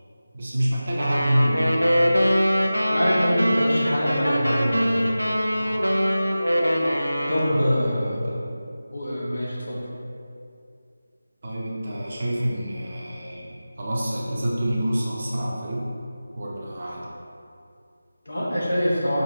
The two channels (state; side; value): inverted; both; correlation -0.96